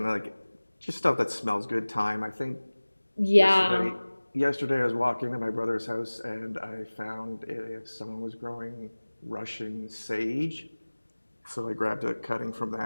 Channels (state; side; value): inverted; both; correlation -1.00